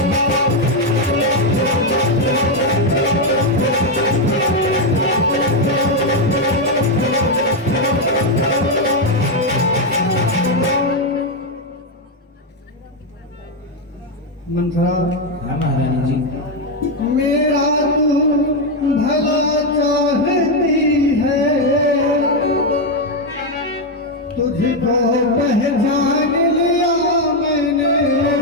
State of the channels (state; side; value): normal; both; correlation 0.04